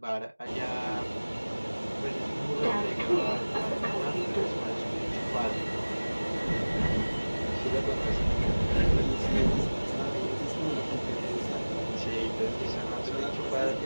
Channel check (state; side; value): inverted; both; correlation -1.00